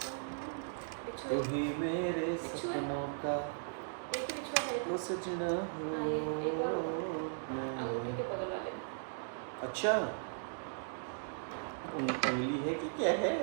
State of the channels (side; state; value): left; silent; digital silence